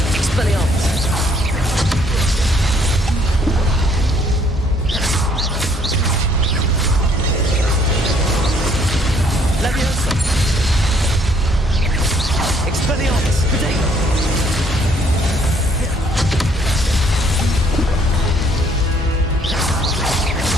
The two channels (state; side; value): normal; both; correlation 0.64